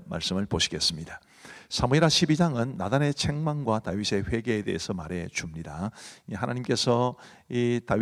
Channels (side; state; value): both; identical; correlation 1.00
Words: 말씀을 보시겠습니다. 사무엘하 12장은 나단의 책망과 다윗의 회개에 대해서 말해 줍니다. 하나님께서 이